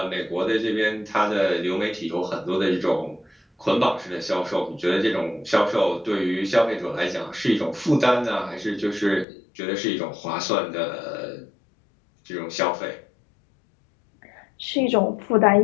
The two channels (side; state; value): right; drops out; at 9.2 s